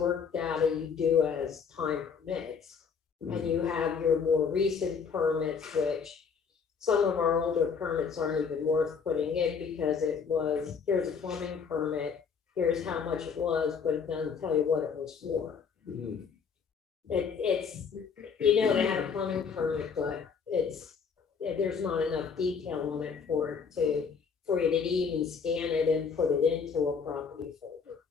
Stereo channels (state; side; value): quieter; right; 6.0 dB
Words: data you do as time permits. And you have your more recent permits, which some of our older permits aren't even worth putting in, because it was, here's a plumbing permit, here's how much it was, but it doesn't tell you what it was for. Mhm. It's, you know, they had a plumbing permit, but there's not enough detail on it for you to even scan it and put it into a property folder.